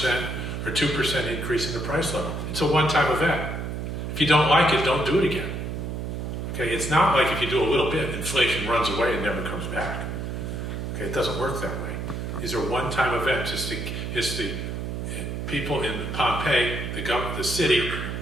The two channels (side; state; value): right; noise; hum, 4 dB below the sound